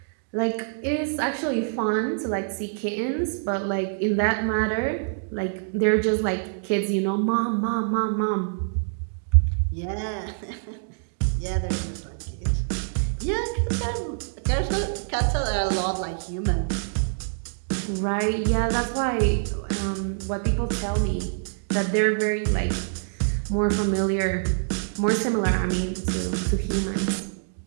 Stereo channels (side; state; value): left; silent; digital silence